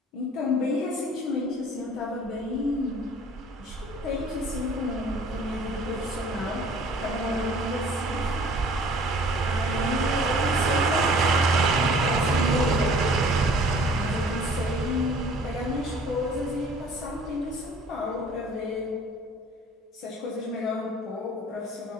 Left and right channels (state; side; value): normal; both; correlation 0.51